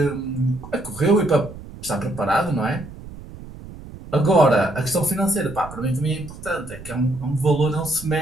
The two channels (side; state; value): right; noise; rumble, 15 dB below the sound